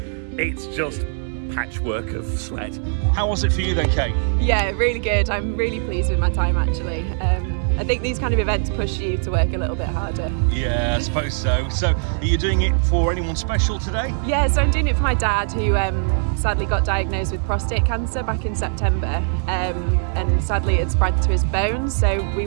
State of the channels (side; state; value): left; silent; digital silence